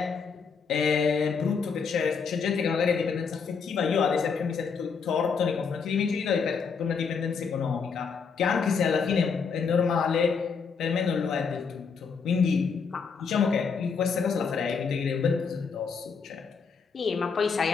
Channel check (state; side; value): quieter; right; 5.7 dB